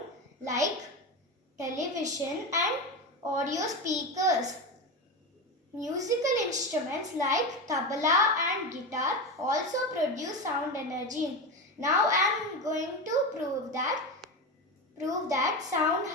like television and audio speakers. Musical instruments like tabla and guitar also produce sound energy. Now I am going to prove that sound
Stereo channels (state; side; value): normal; both; correlation 0.18